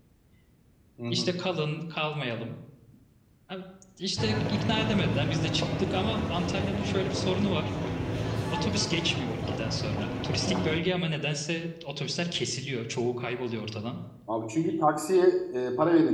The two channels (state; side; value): identical; both; correlation 1.00